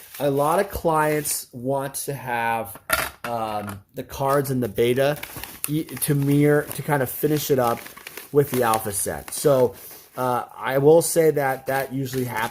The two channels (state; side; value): identical; both; correlation 1.00